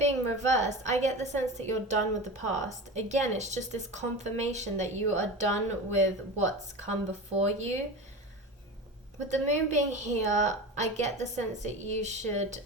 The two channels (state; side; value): normal; both; correlation 0.29